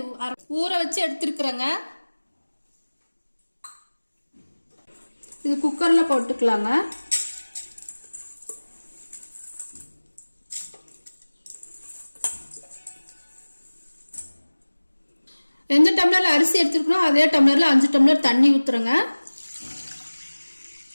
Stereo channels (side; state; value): both; inverted; correlation -1.00